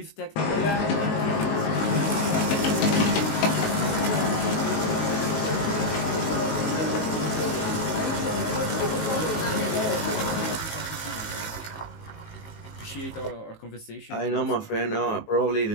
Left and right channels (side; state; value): right; late; 19 ms